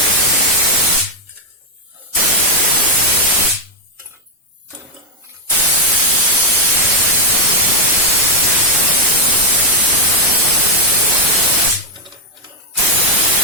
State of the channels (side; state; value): both; normal; correlation 0.02